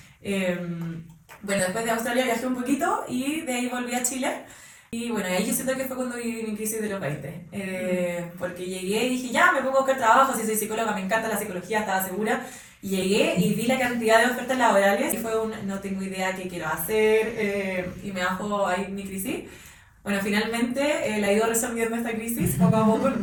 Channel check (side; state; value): both; identical; correlation 1.00